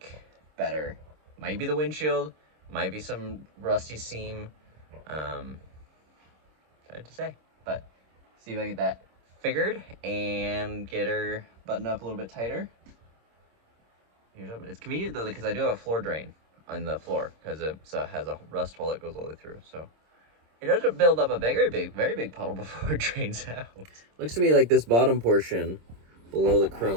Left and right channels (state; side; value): late; left; 26 ms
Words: better. Might be the windshield, might be some rusty seam. Hard to say, but see if I can get that figured and get her buttoned up a little bit tighter. Here's open. It's convenient though because I do have a floor drain on the floor because it has a rust hole that goes all the way through. So it doesn't build up a very big puddle before it drains out. Looks to me like this bottom portion below the